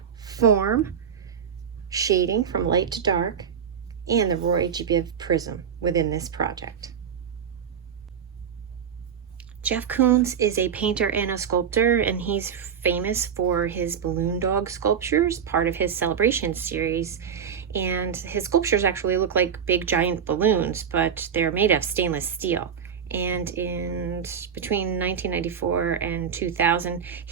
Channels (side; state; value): left; quieter; 7.7 dB